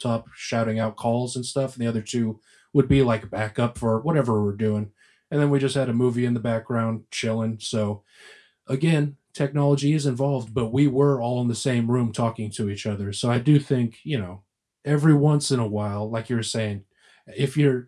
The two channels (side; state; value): both; identical; correlation 1.00